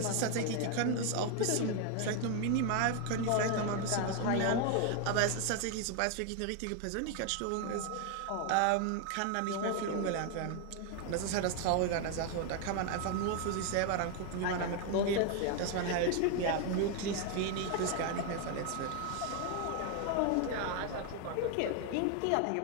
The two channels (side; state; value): both; different; correlation 0.01